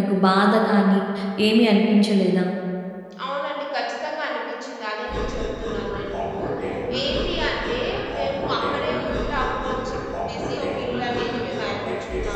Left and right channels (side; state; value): both; identical; correlation 1.00